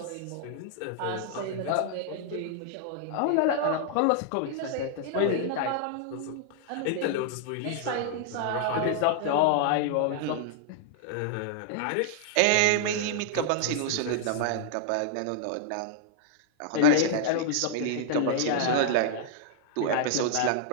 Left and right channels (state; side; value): different; both; correlation -0.01